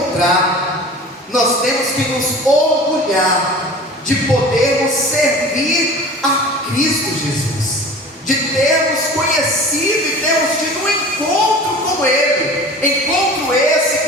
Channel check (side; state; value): both; normal; correlation 0.40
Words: nós temos que nos orgulhar de podermos servir a Cristo Jesus, de termos conhecido e termos tido um encontro com Ele, encontro esse